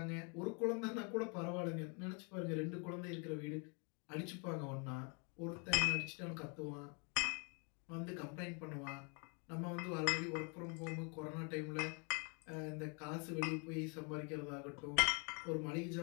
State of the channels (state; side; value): quieter; right; 35.9 dB